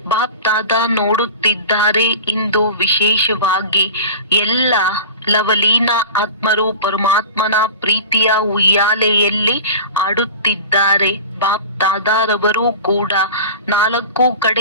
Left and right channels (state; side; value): inverted; both; correlation -0.35